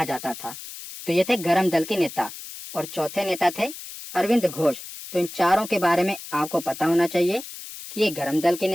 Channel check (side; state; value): left; noise; hiss, 12 dB below the sound